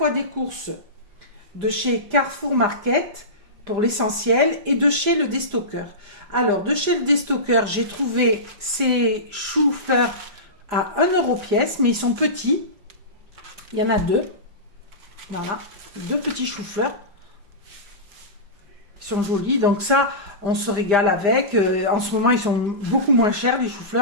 des courses de chez Carrefour Market, pour l'essentiel, et de chez le Destocker. Alors, de chez le Destocker, j'ai trouvé ces choux-fleurs à 1 € pièce, mais ils sont petits. Il y en a deux. Voilà, deux petits choux-fleurs. Ils sont jolis, donc ça, on se régale avec. En ce moment, ils sont beaucoup moins chers, les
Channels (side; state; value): left; late; 5.0 ms